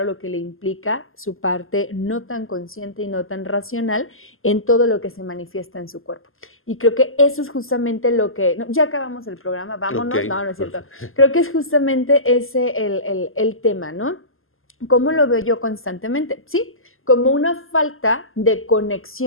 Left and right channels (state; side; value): late; right; 0.60 ms